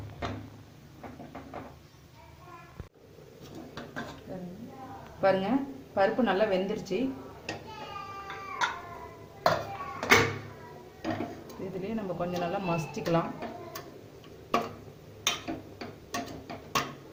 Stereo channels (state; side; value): identical; both; correlation 1.00